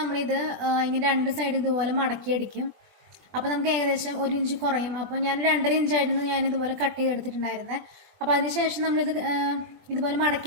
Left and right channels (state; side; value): late; left; 21 ms